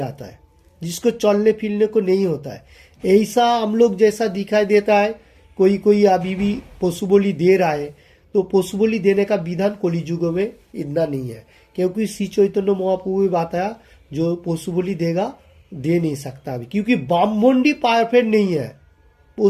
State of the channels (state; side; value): identical; both; correlation 1.00